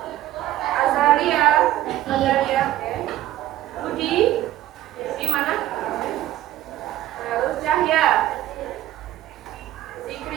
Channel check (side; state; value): left; quieter; 14.2 dB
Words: Azalia, Budi, di mana? Terus Cahya,